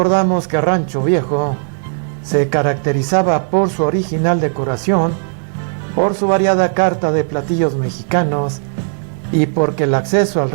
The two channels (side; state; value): left; silent; digital silence